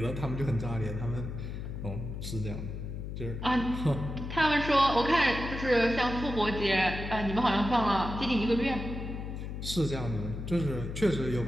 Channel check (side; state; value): left; noise; hum, 6 dB below the sound